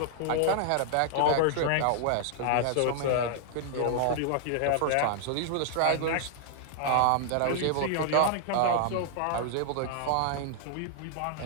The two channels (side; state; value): both; different; correlation -0.01